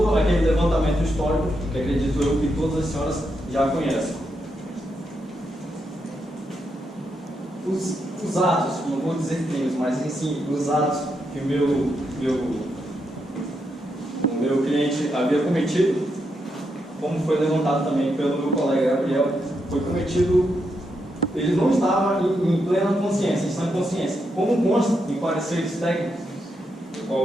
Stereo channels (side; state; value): both; normal; correlation 0.82